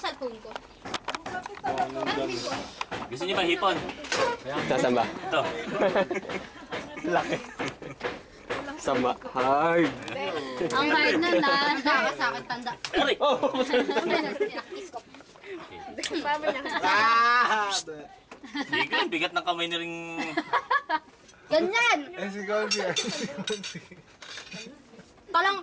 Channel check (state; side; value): identical; both; correlation 1.00